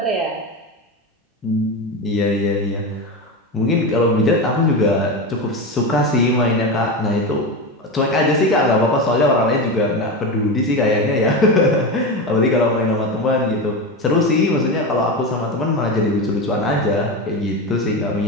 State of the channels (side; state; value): both; normal; correlation 0.19